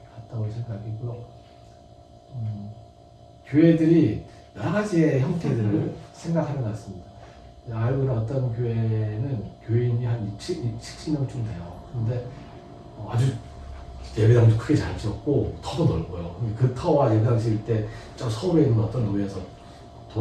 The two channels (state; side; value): identical; both; correlation 1.00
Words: 갔다 올 생각이고요. 교회들이 여러 가지의 형태들을 생각하는 것 같습니다. 알고 있는 어떤 교회는 교인이 한 60명쯤 돼요. 근데 아주 예배당도 크게 잘 지었고 터도 넓어요. 그 터와 예배당 지을 때 저 서울에 있는 어떤 교회에서